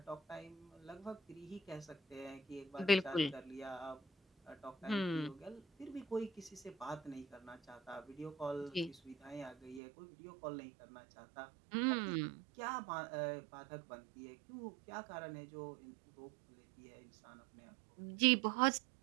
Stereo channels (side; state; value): left; drops out; at 9.8 s